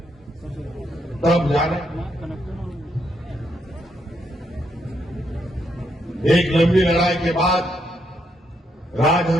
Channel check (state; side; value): normal; both; correlation 0.77